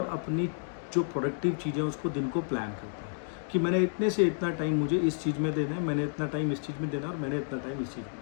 अपनी जो प्रोडक्टिव चीज़ें उसको दिन को प्लान करता है कि मैंने इतने से इतना टाइम मुझे इस चीज़ में देना है, मैंने इतना टाइम इस चीज़ में देना है और मैंने इतना टाइम इस चीज़ में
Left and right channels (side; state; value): right; silent; digital silence